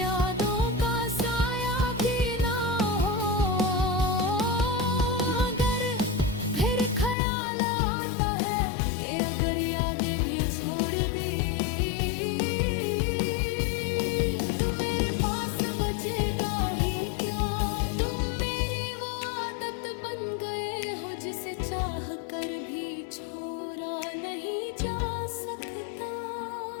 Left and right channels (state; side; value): drops out; right; at 7.2 s